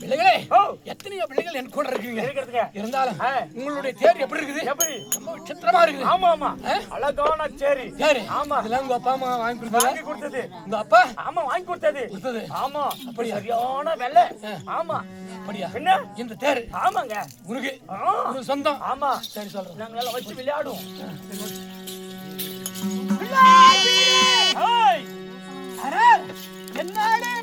பிள்ளைகளே எத்தனையோ பிள்ளைகள் என் கூட இருக்கீங்க. இருந்தாலும் உங்களுடைய தேர் எப்படி இருக்குது? ரொம்ப விசித்திரமா இருக்குது. ஆமா அழகான சேரி. ஆமா அதெல்லாம் உங்க அப்பா அம்மா வாங்கி கொடுத்தது. உங்க அப்பா வாங்கி கொடுத்தது. ஆமா அப்படி சரியான வெள்ளை. ஆமா அப்படியா? என்ன இந்த தேர்? ஆமாங்க உனக்கு சொந்தம். ஆமா சரி சொல்றேன். நாங்க எல்லாம் வச்சு விளையாடுவோம். என்னாலே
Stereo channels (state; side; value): identical; both; correlation 1.00